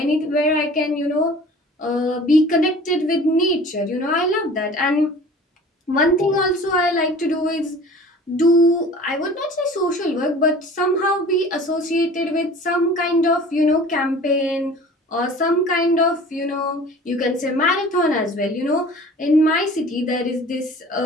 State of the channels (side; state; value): both; normal; correlation 0.44